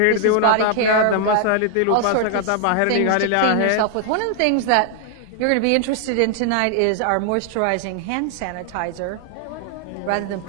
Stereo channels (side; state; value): both; different; correlation 0.00